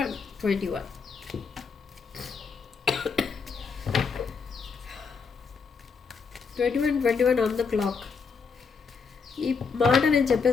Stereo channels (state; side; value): quieter; right; 5.3 dB